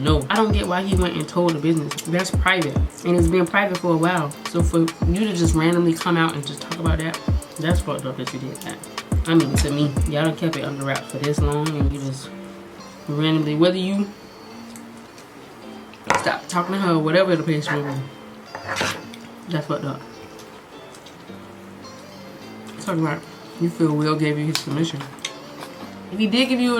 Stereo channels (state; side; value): identical; both; correlation 1.00